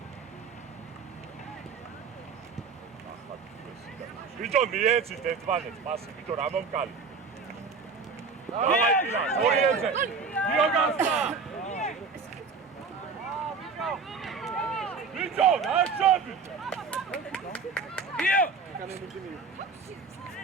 ბიჭო მიეცით ერთმანეთს პასი ბიჭო რა მომკალი დავაი ორიენზე გიოგასა ბიჭო ნაშობი გიო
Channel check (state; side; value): quieter; left; 5.0 dB